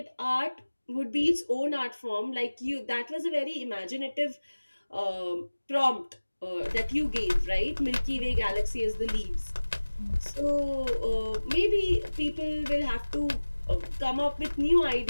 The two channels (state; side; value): inverted; both; correlation -1.00